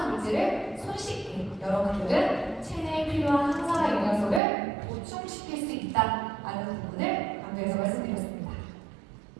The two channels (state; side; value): drops out; left; at 4.4 s